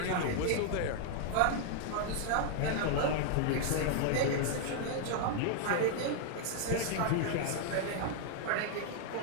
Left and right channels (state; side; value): different; both; correlation -0.01